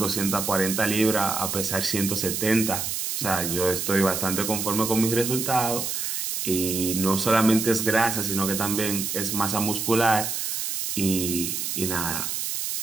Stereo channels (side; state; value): right; noise; hiss, 2 dB below the sound